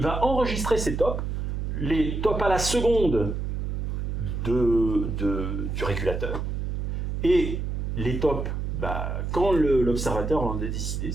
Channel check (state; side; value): noise; right; hum, 2 dB below the sound